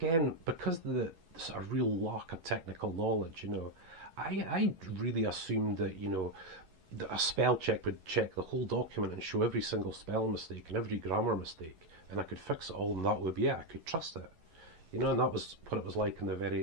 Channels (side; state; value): left; late; 11 ms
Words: because of the sort of real lack of technical knowledge, you know, I really assumed that, you know, that a spell check would check the whole document and show every single spell mistake and every grammar mistake, and I could fix it all, and that would be it. I could trust it. You know, and that was what it was like in